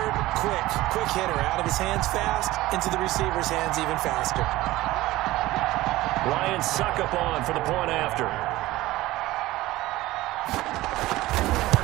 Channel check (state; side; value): quieter; left; 17.6 dB